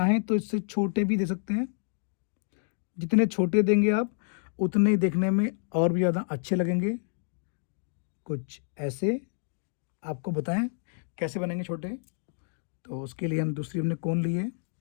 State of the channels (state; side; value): silent; right; digital silence